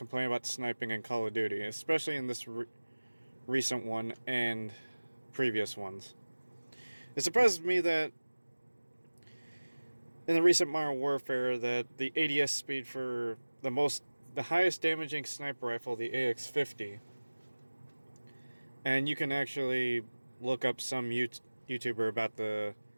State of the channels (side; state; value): both; inverted; correlation -1.00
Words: about sniping in Call of Duty, especially in this recent one and previous ones. It surprises me that in the recent Modern Warfare that the ADS speed for the highest damaging sniper rifle, the AX-50, and you can actually look up some YouTuber about